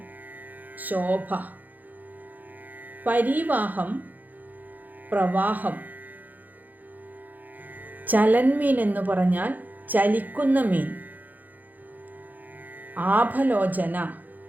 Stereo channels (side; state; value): left; late; 0.083 ms